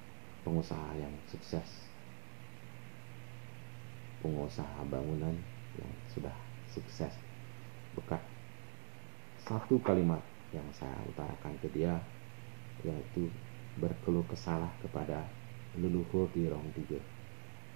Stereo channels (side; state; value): left; silent; digital silence